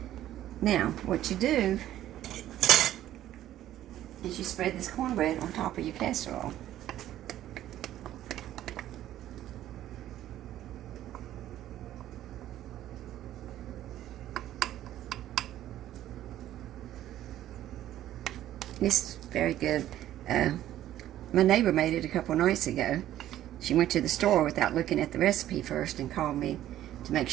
Now, what you do is you spread this cornbread on top of your casserole. It's very good. My neighbor made it a couple nights ago. She went to the store without looking at the recipe first and called me to make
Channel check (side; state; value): left; quieter; 12.9 dB